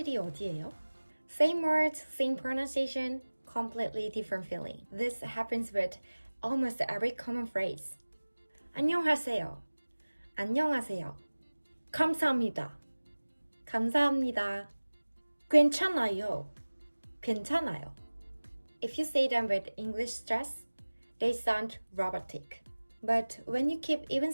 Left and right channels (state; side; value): inverted; both; correlation -1.00